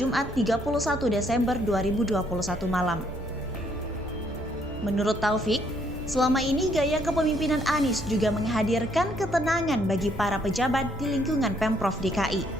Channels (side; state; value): both; normal; correlation 0.69